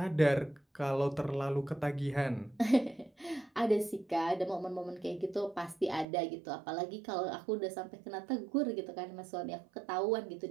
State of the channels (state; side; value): drops out; left; at 6.1 s